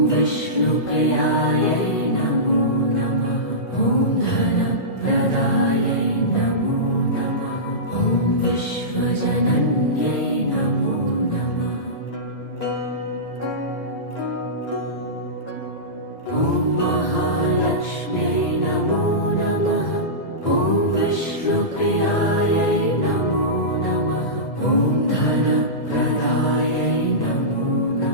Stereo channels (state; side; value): late; right; 1.9 ms